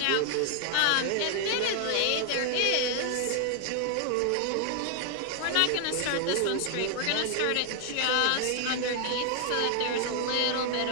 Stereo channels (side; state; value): both; different; correlation 0.00